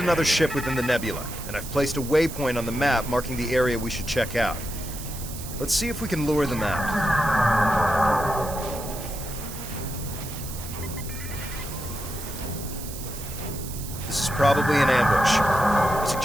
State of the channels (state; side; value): noise; right; hiss, 11 dB below the sound